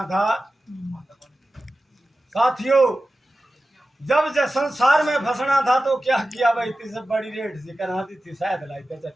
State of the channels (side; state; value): both; normal; correlation 0.94